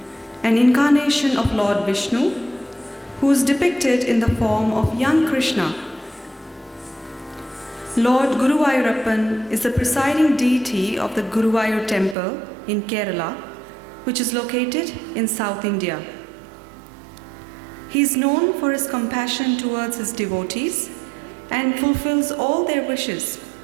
an incarnation of Lord Vishnu, who is depicted in the form of young Krishna. Lord Guruvayurappan is the presiding deity of the Guruvayur temple in Kerala, which is located in South India. He is known for his compassion towards his devotees and fulfills all their wishes.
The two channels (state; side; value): drops out; left; at 12.2 s